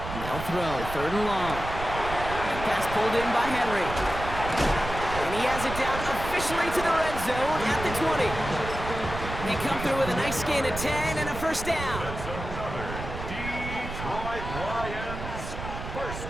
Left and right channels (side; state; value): right; noise; rumble, 8 dB below the sound